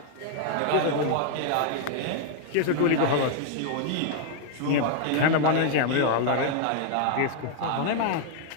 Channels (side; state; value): both; different; correlation 0.00